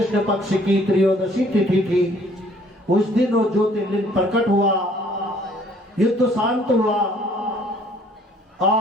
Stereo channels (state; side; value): normal; both; correlation 0.59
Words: पक्ष की त्रयोदशी तिथि थी, उस दिन वो ज्योतिर्लिंग प्रकट हुआ, युद्ध शांत हुआ